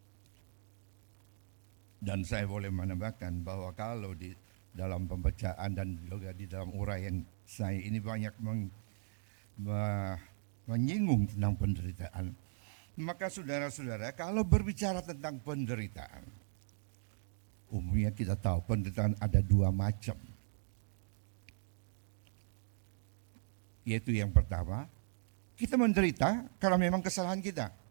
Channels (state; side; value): silent; left; digital silence